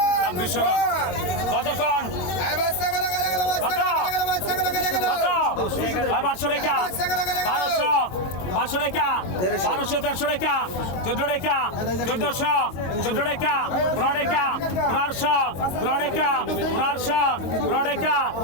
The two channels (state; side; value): late; right; 22 ms